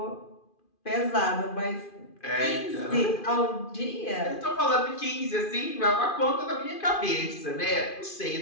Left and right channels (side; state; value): right; late; 2.5 ms